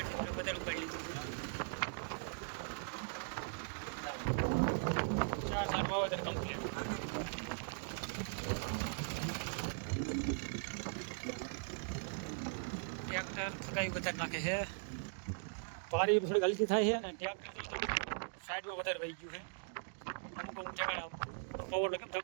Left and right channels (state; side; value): silent; left; digital silence